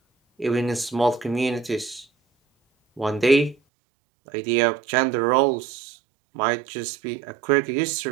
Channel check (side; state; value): left; drops out; at 3.6 s